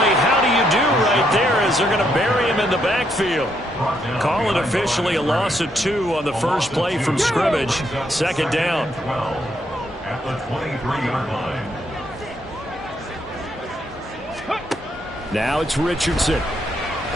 how do you do right there as they're going to bury him in the backfield. Call it officially a loss of 2 on the first play from scrimmage. Second down. At the 23-yard line. Now it's Richardson.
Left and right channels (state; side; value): normal; both; correlation 0.75